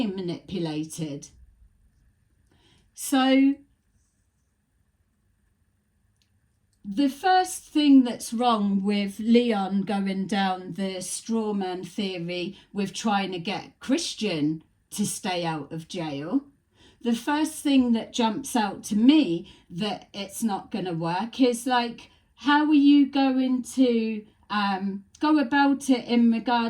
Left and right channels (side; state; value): both; identical; correlation 1.00